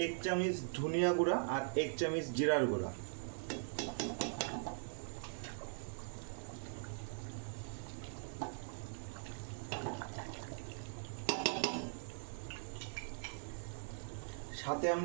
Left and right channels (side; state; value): left; silent; 50 dB below the other